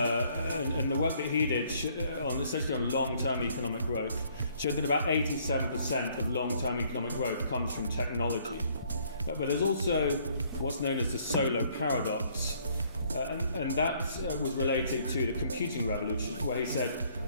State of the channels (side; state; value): both; inverted; correlation -0.64